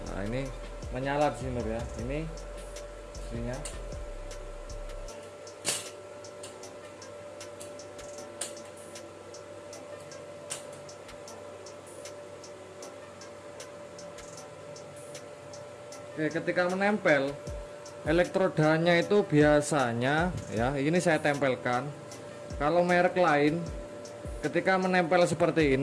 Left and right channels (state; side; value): identical; both; correlation 1.00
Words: Nah ini menyala di sini lur ya. Ini mesinnya. Oke, ketika menempel elektrodanya itu biasanya ya ini saya tempelkan. Kalau merek lain ketika menempel seperti